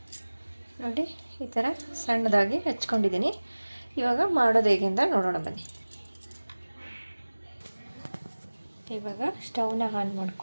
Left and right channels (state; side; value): inverted; both; correlation -1.00